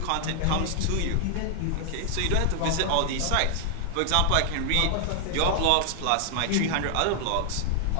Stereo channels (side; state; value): both; different; correlation 0.00